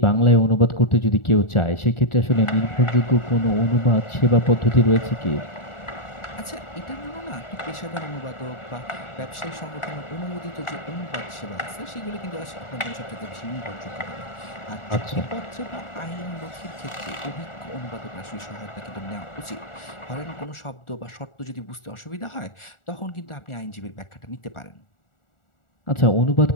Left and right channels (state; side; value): late; right; 1.4 ms